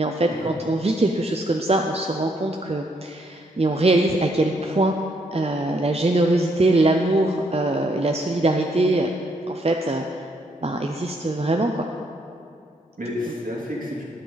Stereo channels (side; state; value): both; normal; correlation 0.72